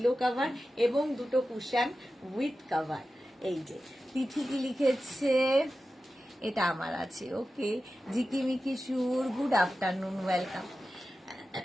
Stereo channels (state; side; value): normal; both; correlation 0.93